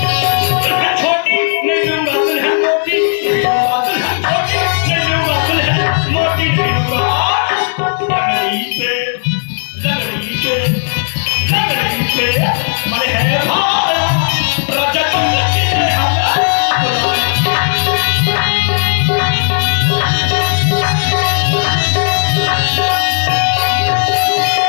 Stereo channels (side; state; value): right; silent; digital silence